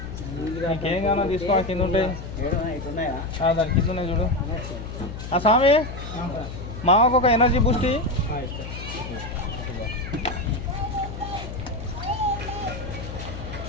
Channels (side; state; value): left; noise; hum, 9 dB below the sound